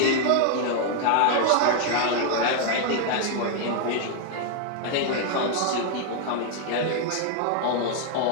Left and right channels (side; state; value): both; different; correlation 0.00